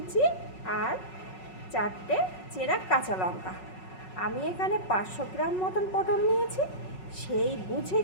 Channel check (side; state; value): right; late; 5.4 ms